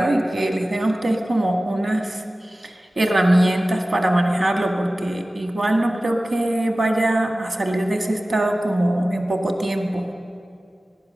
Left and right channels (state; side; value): normal; both; correlation 0.97